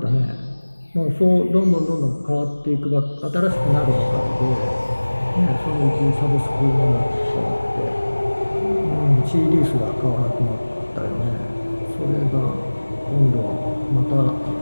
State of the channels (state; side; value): inverted; both; correlation -1.00